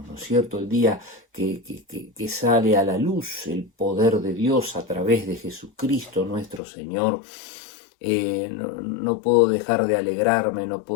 ¿no es cierto? El día que sale a la luz el poder de Dios a través de Jesucristo nuestro Señor. No puedo dejar de alegrarme, no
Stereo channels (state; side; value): drops out; right; at 6.6 s